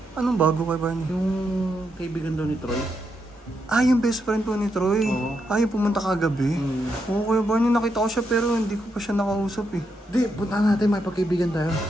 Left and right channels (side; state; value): both; normal; correlation 0.81